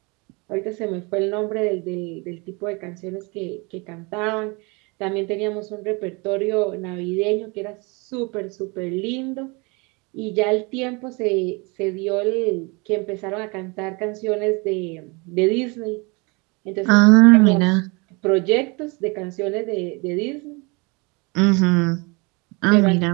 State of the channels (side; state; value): left; quieter; 28.9 dB